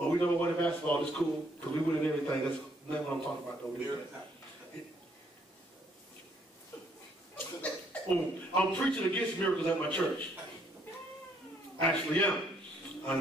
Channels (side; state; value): both; normal; correlation 0.67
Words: we never won in basketball. It's cool, because we winning everything. That's not what I'm talking about, though. I'm preaching against miracles at my church. Actually, yeah.